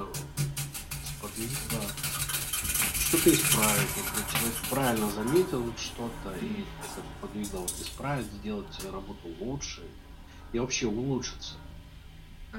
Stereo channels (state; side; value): identical; both; correlation 1.00